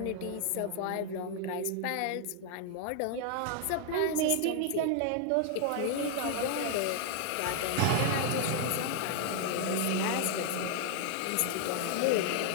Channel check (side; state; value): both; different; correlation 0.00